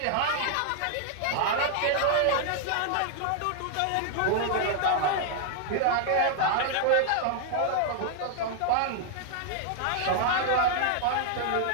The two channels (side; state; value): both; different; correlation 0.00